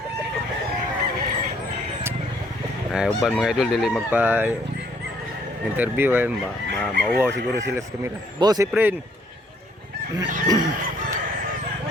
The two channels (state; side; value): normal; both; correlation 0.65